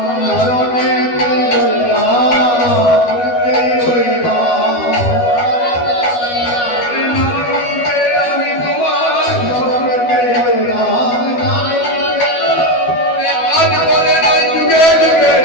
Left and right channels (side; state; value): right; late; 12 ms